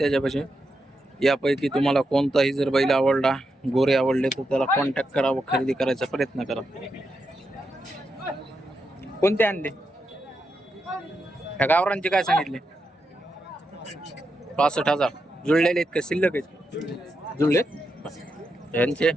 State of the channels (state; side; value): normal; both; correlation 0.85